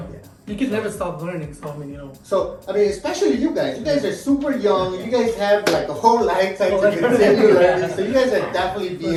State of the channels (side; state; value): both; identical; correlation 1.00